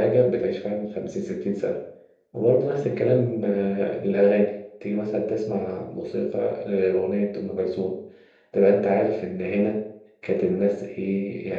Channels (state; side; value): identical; both; correlation 1.00